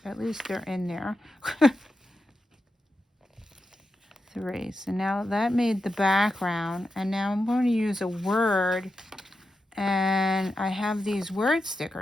at least they're in there. 3. So now that made the background, and now I'm going to use a word, and I have these word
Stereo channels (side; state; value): both; normal; correlation 0.89